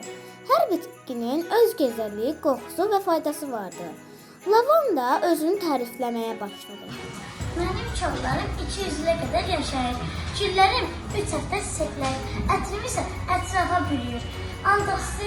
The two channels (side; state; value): both; identical; correlation 1.00